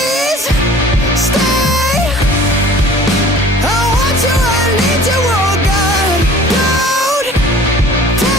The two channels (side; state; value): both; normal; correlation 0.48